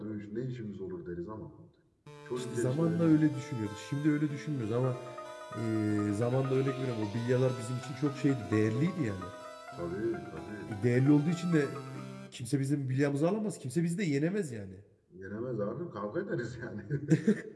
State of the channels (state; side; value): identical; both; correlation 1.00